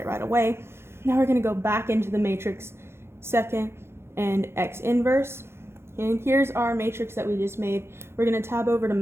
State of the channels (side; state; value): left; late; 0.12 ms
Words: right away. Now we're going to go back into the matrix, second and x inverse. And here's our matrix that we just made. We're going to tab over to